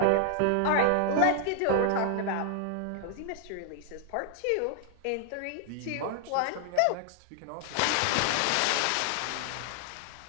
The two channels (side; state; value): both; different; correlation 0.00